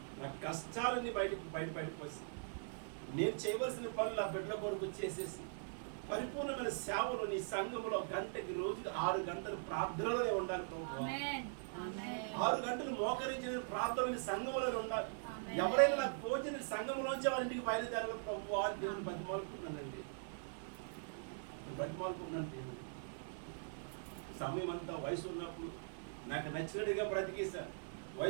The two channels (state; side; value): silent; left; 50 dB below the other